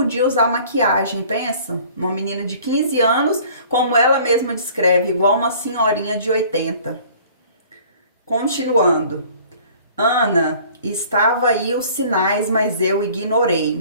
usar maquiagem, pensa? Uma menina de 15 anos, como ela mesma descreve, igual uma senhorinha de 80. Continuando. Ana, estava aí os sinais, mas eu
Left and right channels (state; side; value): inverted; both; correlation -0.51